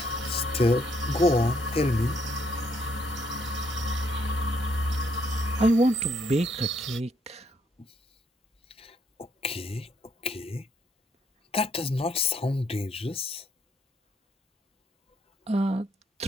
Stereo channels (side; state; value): both; normal; correlation 0.71